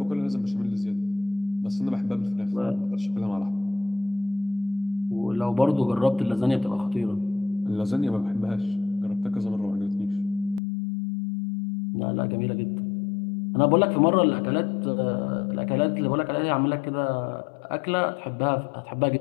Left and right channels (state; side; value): drops out; right; at 10.6 s